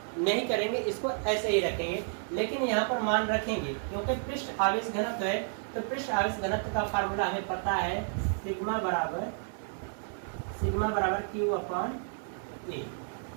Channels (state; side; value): silent; left; digital silence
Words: नहीं करेंगे, इसको ऐसे ही रखेंगे। लेकिन यहाँ पर मान रखेंगे क्योंकि पृष्ठ आवेश घनत्व है, तो पृष्ठ आवेश घनत्व का फार्मूला हमें पता है, सिग्मा बराबर Q अपॉन A।